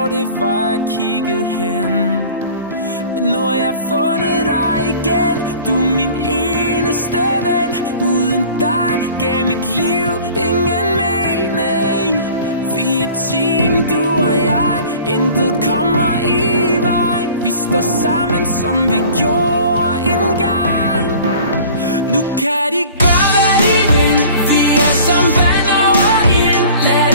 det var, jeg kiggede hen. Men nu har jeg fundet dig igen, du er min eneste ven. Uden dig gav mit liv ingen mening. Vi er et team, du og jeg, intet kommer i vejen. Vi står sammen, som vi gjorde engang. Nu kan de gøre, hvad de vil. Vi er som vand over ild. Lad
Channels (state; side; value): inverted; both; correlation -0.46